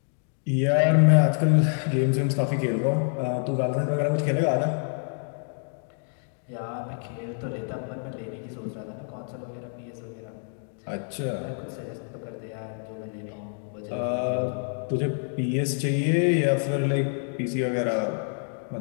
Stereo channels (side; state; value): right; silent; 60 dB below the other